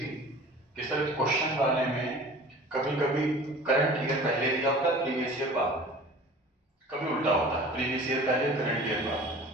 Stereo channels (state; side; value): normal; both; correlation 0.43